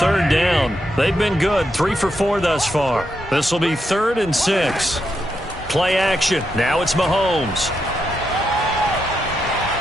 down. They've been good, 3 for 4 thus far. This will be 3rd and 6. Play action. Now it's Mahomes.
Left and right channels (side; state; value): both; normal; correlation 0.83